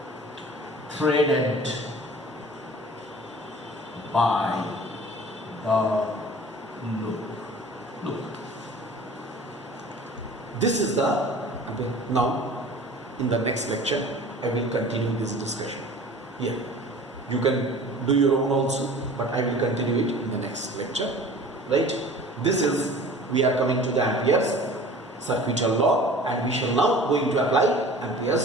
threaded by the loop. This is the, now in the next lecture I will continue this discussion here. You can do your own also, but I will continue it in the next lecture, right? This is, we are coming to the Ampere's Circuit Law, and we shall now going to apply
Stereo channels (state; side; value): normal; both; correlation 0.44